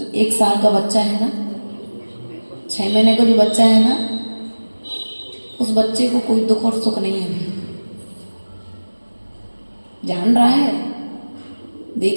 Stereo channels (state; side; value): inverted; both; correlation -1.00